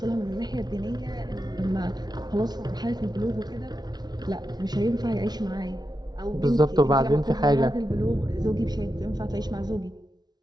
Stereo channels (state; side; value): late; left; 0.19 ms